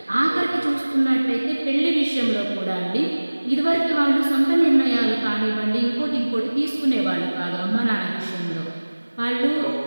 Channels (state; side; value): inverted; both; correlation -1.00